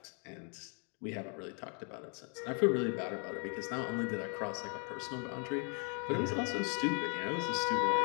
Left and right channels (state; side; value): quieter; right; 38.3 dB